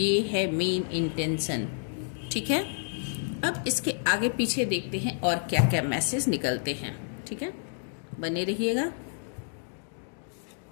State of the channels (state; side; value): silent; right; digital silence